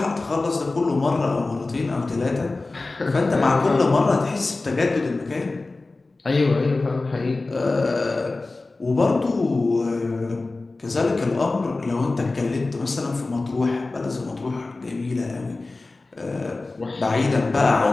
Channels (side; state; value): right; quieter; 3.3 dB